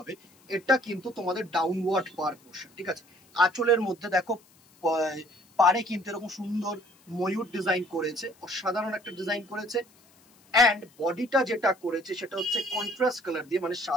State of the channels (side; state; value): left; noise; hiss, 30 dB below the sound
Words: এটা কিন্তু তোমাদের ডাউনওয়ার্ড পার পোর্শন। ঠিক আছে, আঁচলের মধ্যে দেখো পারে কিন্তু এরকম সুন্দর ময়ূর ডিজাইন করেছে, অসাধারণ একটা ডিজাইন করেছে। অ্যান্ড বডিটা যেটা করেছে সেটা হচ্ছে কন্ট্রাস্ট কালার দিয়ে, মানে